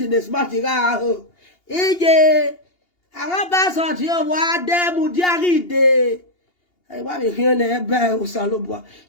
de smart ga ho ije awon ba so ti o wa de mu diari de I want to hear the ebe usalobwa.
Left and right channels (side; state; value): right; late; 2.8 ms